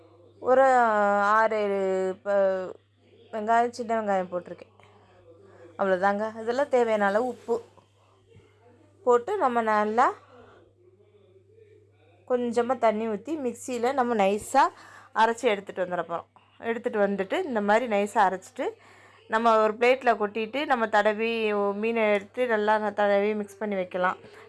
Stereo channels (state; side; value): identical; both; correlation 1.00